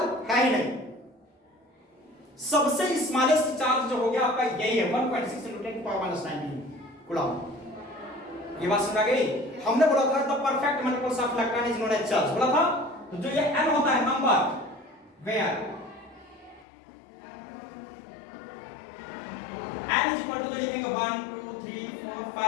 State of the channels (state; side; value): drops out; right; at 16.7 s